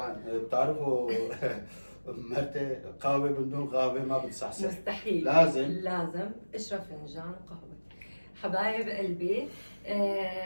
بتعرفوا مرتي قهوة بدون قهوة ما بتصحصح. مستحيل. لازم اشرب فنجان قهوة. حبايب قلبي،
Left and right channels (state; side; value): inverted; both; correlation -1.00